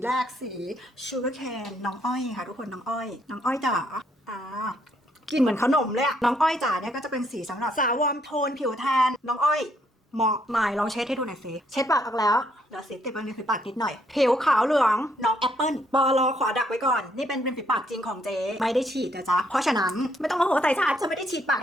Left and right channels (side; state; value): both; normal; correlation 0.71